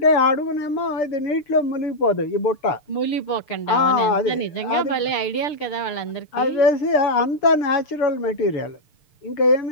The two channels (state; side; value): late; right; 6.7 ms